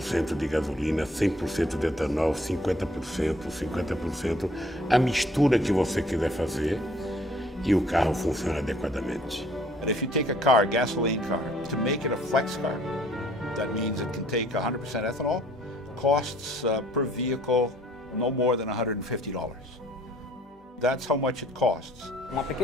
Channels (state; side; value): normal; both; correlation 0.58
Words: de gasolina, 100% de etanol, 50%, a mistura que você quiser fazer, e o carro funciona adequadamente. And if you take a car, gasoline car, to make it a flex car, that means it can take 100% ethanol, costs per vehicle no more than $150. That's how much it costs. Uma